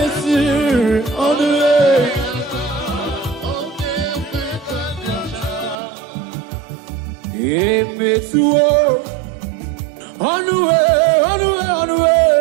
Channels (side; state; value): left; drops out; at 5.8 s